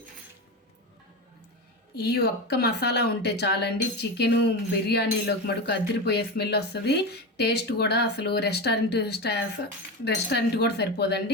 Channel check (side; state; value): both; normal; correlation 0.20